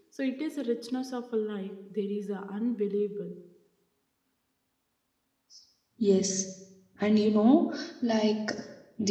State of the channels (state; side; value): identical; both; correlation 1.00